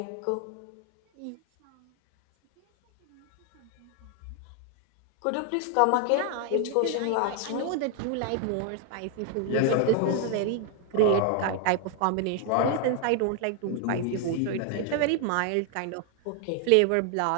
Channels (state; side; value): different; both; correlation 0.00